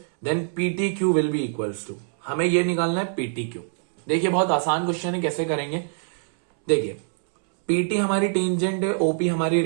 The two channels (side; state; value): left; silent; 63 dB below the other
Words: then PTQ will be equals to. हमें ये निकालना है PTQ। देखिए बहुत आसान क्वेश्चन है, कैसे करेंगे देखिए। PT हमारी टेंजेंट है, OP हमारी